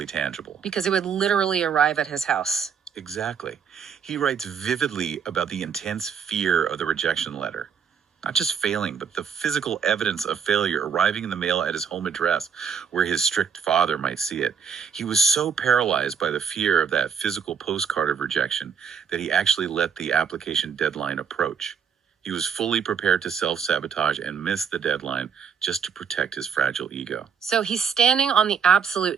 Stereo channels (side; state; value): left; quieter; 6.9 dB